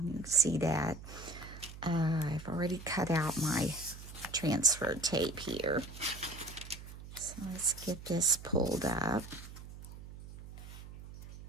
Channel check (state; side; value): noise; right; hum, 14 dB below the sound